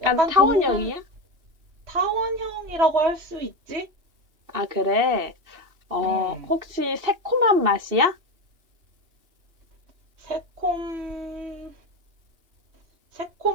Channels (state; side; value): late; left; 2.7 ms